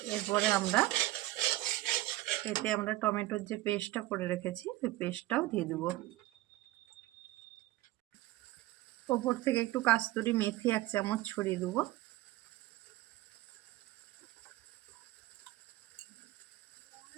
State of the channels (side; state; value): left; quieter; 17.4 dB